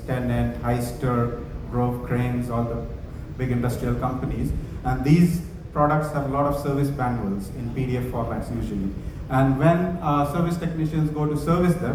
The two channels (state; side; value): identical; both; correlation 1.00